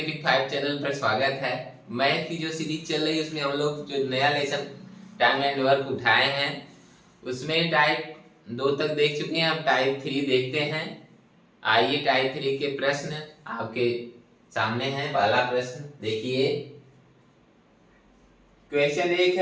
5 चैनल पर स्वागत है। मैथ की जो सीरीज चल रही है उसमें हम लोग जो नया लेसन टाइम एंड वर्क उठाए हैं उसमें टाइप 2 तक देख चुके हैं। अब टाइप 3 देखते हैं। आइए टाइप 3 के प्रश्न आपके सामने हैं। पहला प्रश्न देखिए। क्वेश्चन 1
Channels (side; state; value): both; identical; correlation 1.00